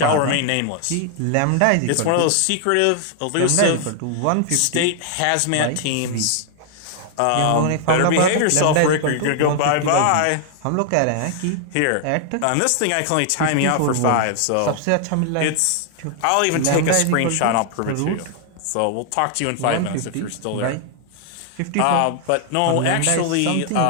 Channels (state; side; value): different; both; correlation 0.00